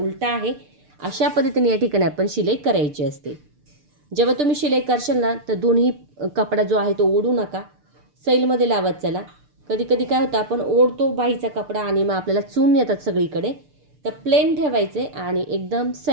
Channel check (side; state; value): left; late; 6.7 ms